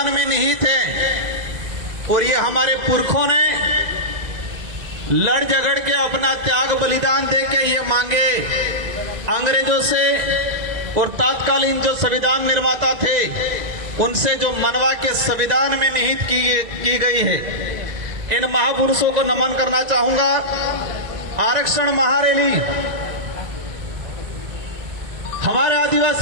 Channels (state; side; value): late; left; 2.0 ms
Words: में निहित है, और ये हमारे पुरखों ने लड़ झगड़ के अपना त्याग बलिदान दे के ये मांगे अंग्रेजों से और तत्कालीन जो संविधान निर्माता थे उनसे जो मनवा के संविधान में निहित की गई है। इन महापुरुषों को नमन करना चाहूंगा। आरक्षण महारैली हमारे